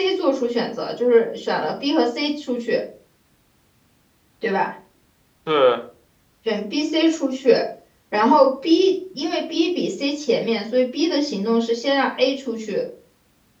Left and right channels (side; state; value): both; identical; correlation 1.00